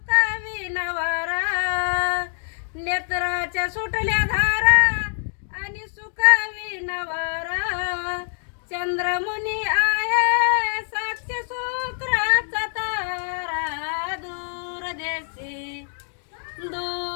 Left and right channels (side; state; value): right; silent; 62 dB below the other